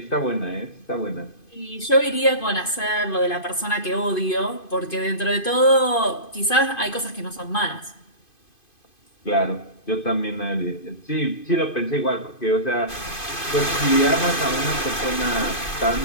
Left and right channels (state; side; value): late; right; 2.5 ms